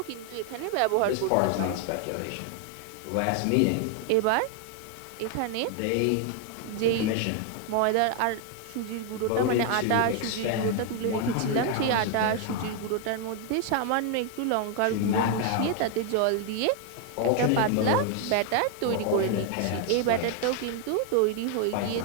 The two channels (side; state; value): both; different; correlation 0.01